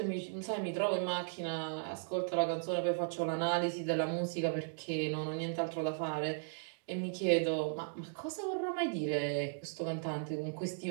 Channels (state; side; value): silent; left; digital silence